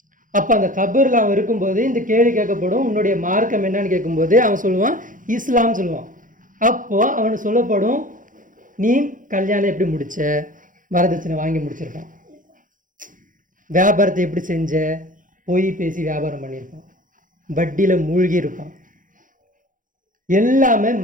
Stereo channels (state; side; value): late; left; 0.38 ms